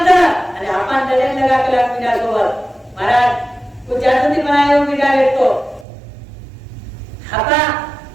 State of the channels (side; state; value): left; drops out; at 5.9 s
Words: आणि हापान डरेन लगा कला मीडा सोबत महाराज कुछ जाती बनायो मीडा भेटतो हापा